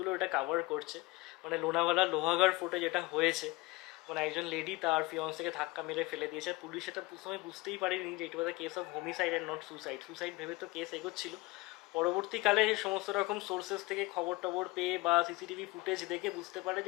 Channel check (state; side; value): quieter; right; 22.3 dB